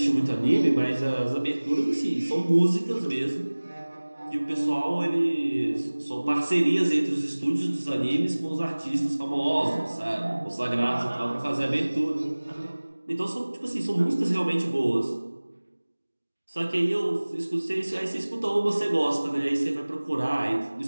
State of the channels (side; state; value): both; inverted; correlation -1.00